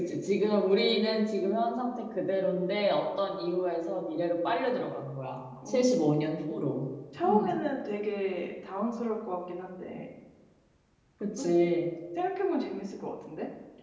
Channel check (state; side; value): identical; both; correlation 1.00